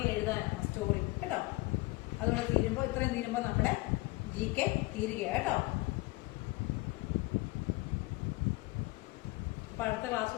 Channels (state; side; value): quieter; right; 22.0 dB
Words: എഴുതാനാണ് സ്റ്റോറി കേട്ടോ. അതുകൊണ്ട് ഇത്രയും തീരുമ്പോൾ നമ്മുടെ GK തീരുകയാണ് കേട്ടോ. അപ്പൊ അടുത്ത ക്ലാസ്